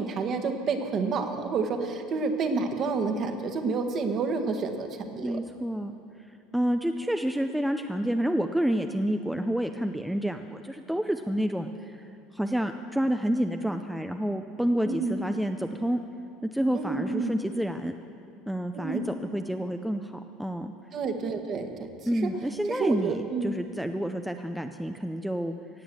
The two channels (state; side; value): normal; both; correlation 0.82